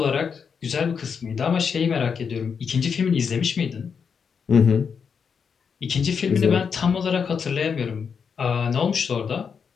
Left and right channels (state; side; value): quieter; right; 6.4 dB